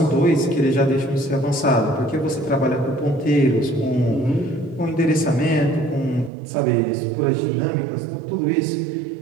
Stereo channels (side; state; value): left; drops out; at 6.3 s